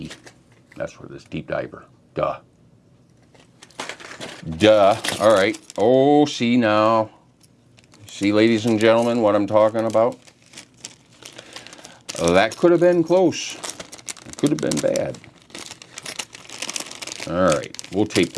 That's what it is, deep diver. Duh. All right. Oh, see now. See, ladies and gentlemen, what I'm talking about? That could have been close. It could have been bad. All right. We'll tape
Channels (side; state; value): both; identical; correlation 1.00